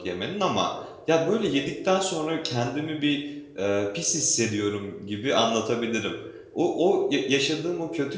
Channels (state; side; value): identical; both; correlation 1.00